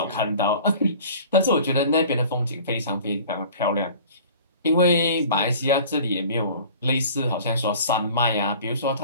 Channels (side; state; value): both; inverted; correlation -0.45